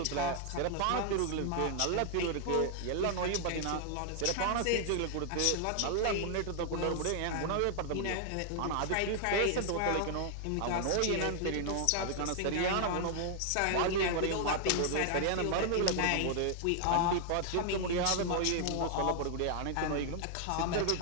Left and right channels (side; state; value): both; different; correlation 0.00